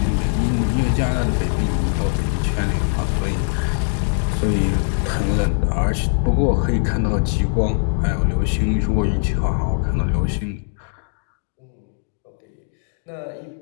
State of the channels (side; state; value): right; silent; digital silence